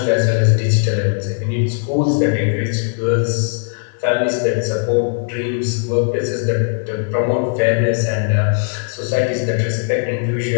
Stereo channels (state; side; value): silent; right; digital silence